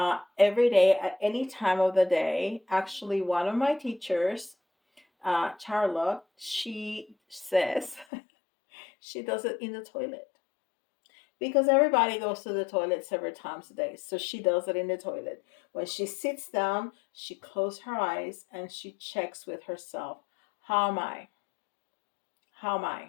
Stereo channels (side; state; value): right; drops out; at 8.1 s